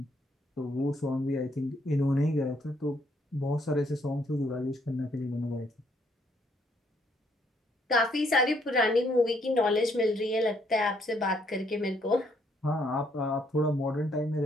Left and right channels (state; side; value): normal; both; correlation 0.70